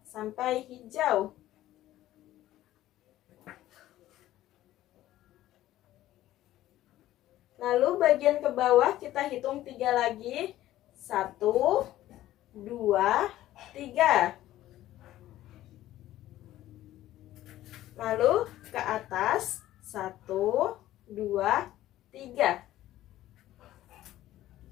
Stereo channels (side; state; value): right; quieter; 14.4 dB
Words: sampai hijau. Lalu bagian ke bawah kita hitung 3 lagi. 1, 2, 3. Lalu ke atas 1, 2, 3.